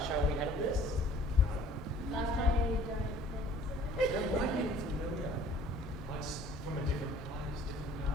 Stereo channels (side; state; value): both; normal; correlation 0.53